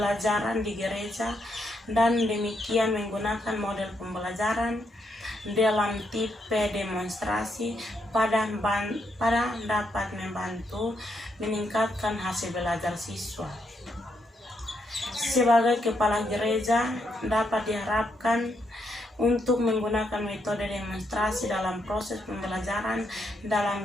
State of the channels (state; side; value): normal; both; correlation 0.78